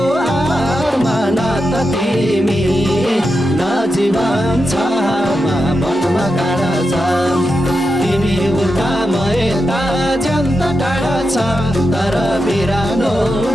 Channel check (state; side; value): normal; both; correlation 0.88